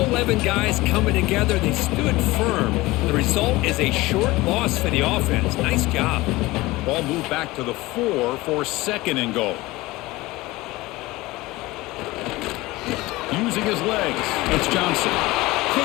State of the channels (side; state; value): right; quieter; 20.1 dB